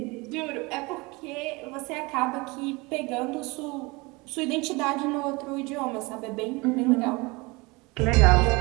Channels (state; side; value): quieter; left; 25.3 dB